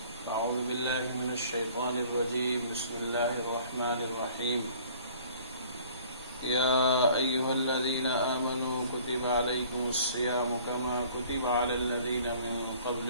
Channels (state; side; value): inverted; both; correlation -0.53